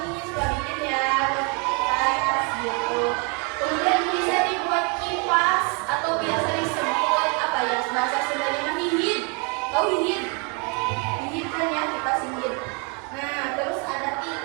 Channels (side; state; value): left; quieter; 34.5 dB